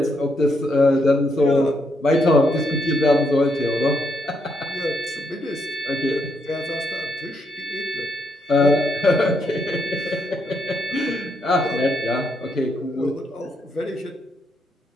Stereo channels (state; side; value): normal; both; correlation 0.77